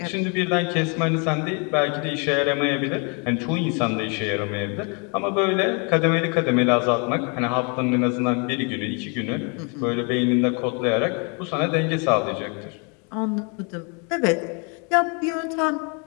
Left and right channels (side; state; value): right; quieter; 35.4 dB